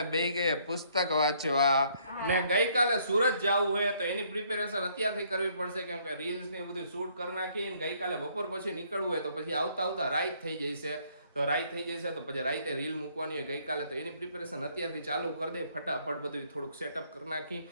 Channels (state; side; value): inverted; both; correlation -0.66